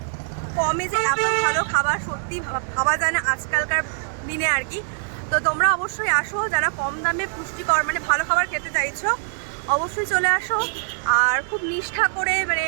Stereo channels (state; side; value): silent; left; 60 dB below the other